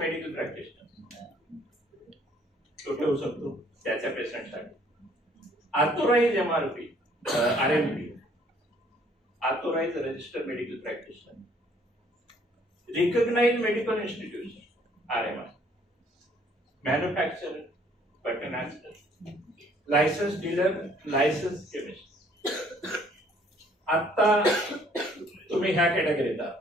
प्रॅक्टिशनर तो ठेवू शकतो त्याच्या पेशंटसाठी. Authorise MRP, RMP, authorise registered medical practitioner. Recognised medical institution, RMI. Manufacturer, pattern master, licence dealer, licence chemist. आता तुम्ही ह्या कॅटेगरीत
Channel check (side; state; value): both; normal; correlation 0.61